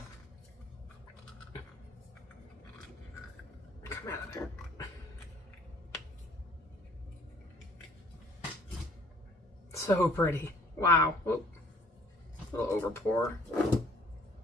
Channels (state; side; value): normal; both; correlation 0.57